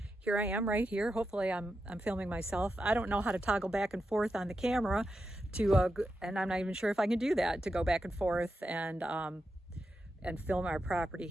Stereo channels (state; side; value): normal; both; correlation 0.88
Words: Here I am right here. Hopefully I'm filming myself. I don't know how to toggle back and forth on the camera and I'm not even sure if I can do that, to go back and forth and film our property